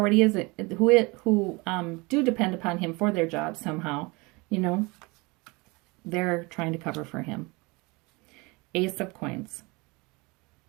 is, who do depend upon him for their jobs somehow. You know, they're trying to cover for him. Ace of coins.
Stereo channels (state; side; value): quieter; left; 25.9 dB